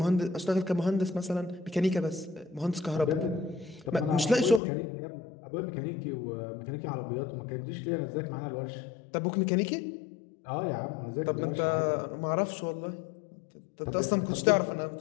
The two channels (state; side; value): drops out; right; at 4.6 s